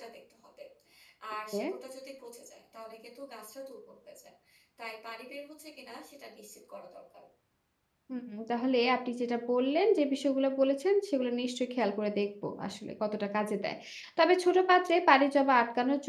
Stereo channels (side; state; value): both; identical; correlation 1.00